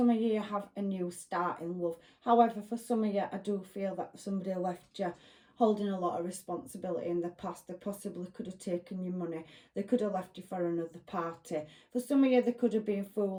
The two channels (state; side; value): identical; both; correlation 1.00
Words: of you, you have a new start in love. However, for some of you, I do feel that somebody left you holding a lot of responsibility in the past. They possibly could have taken your money. They could have left you for another party. For some of you, they could have been